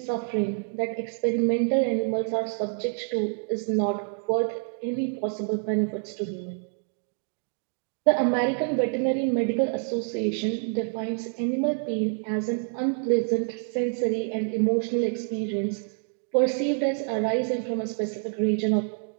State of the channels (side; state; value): left; silent; 55 dB below the other